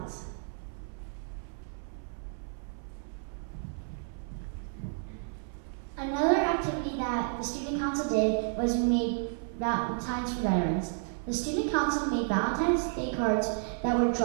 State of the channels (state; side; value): silent; left; 57 dB below the other